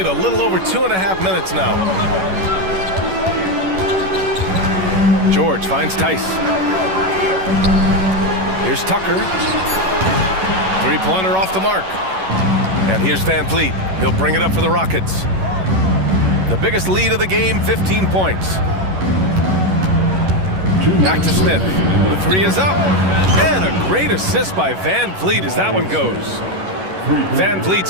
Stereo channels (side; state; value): left; late; 11 ms